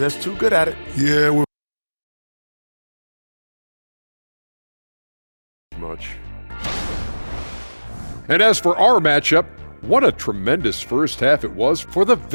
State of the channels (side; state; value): both; inverted; correlation -1.00